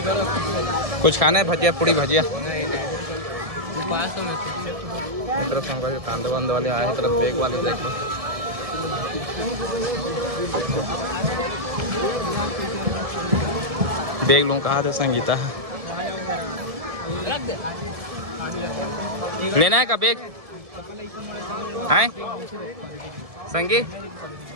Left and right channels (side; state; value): left; late; 1.7 ms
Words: कुछ खाना है? भजिया पूड़ी भजिया तरफ कांदे वांदे वाले आए हैं, तरफ बेग वाले देख लो। बेग लूँ कहा था संगीता लेना है का बेग है संगीत